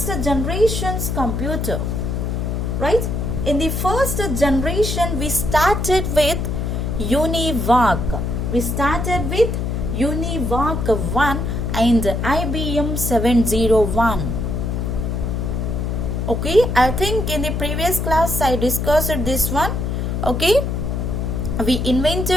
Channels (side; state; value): left; noise; hum, 1 dB below the sound